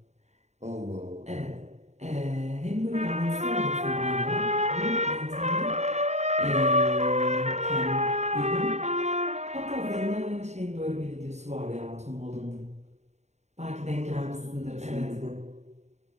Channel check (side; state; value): left; late; 0.33 ms